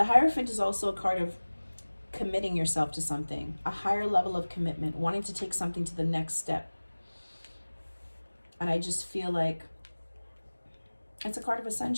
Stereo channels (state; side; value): inverted; both; correlation -1.00